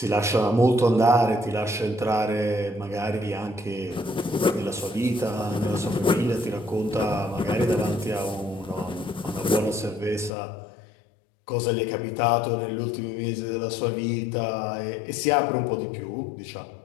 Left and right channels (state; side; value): drops out; right; at 10.3 s